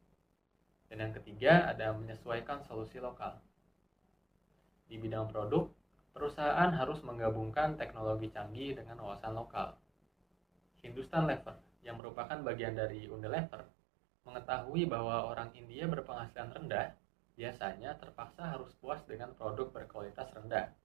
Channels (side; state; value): left; drops out; at 12.0 s